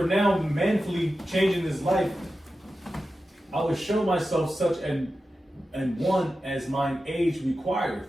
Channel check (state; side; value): normal; both; correlation 0.92